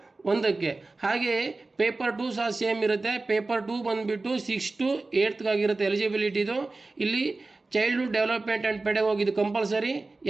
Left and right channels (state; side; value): quieter; left; 3.4 dB